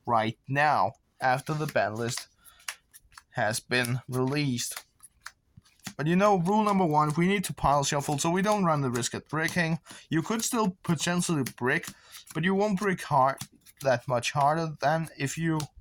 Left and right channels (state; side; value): identical; both; correlation 1.00